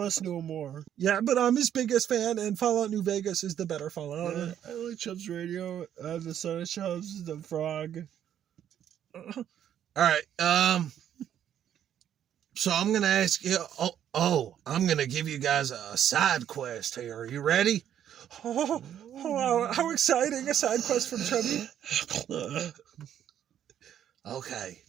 to him more. Yeah, but I'm his biggest fan, and Fallout New Vegas is the better Fallout. Yeah, I like Chubbs Radio, the Son of Chubbs, the Frog. All right, so I'm going to ask you... I'm going to give you guys a side quest here. Are you ready? How exciting, a side quest from Chubby. Okay,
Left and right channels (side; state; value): left; quieter; 10.1 dB